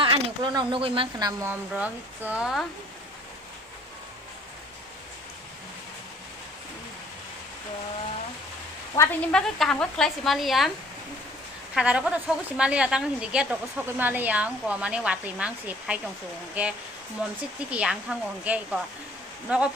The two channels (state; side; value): normal; both; correlation 0.56